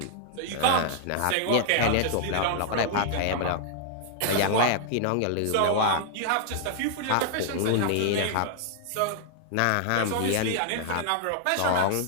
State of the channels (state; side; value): different; both; correlation -0.01